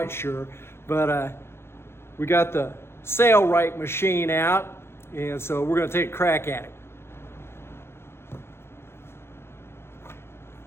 sure, but we got the Sailrite machine out, and so we're gonna take a crack at it.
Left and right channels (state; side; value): late; right; 0.12 ms